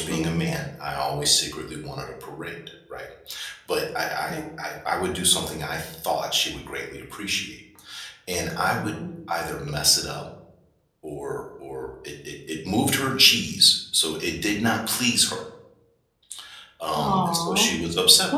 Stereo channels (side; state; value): both; identical; correlation 1.00